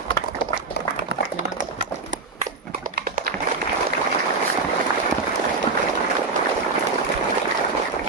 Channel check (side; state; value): left; quieter; 3.9 dB